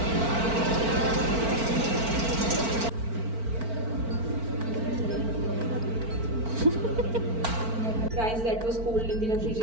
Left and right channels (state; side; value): late; left; 4.4 ms